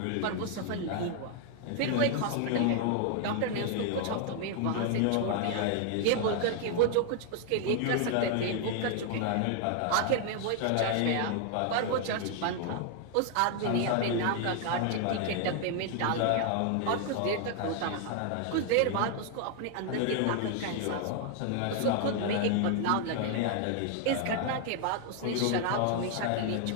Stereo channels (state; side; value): different; both; correlation 0.00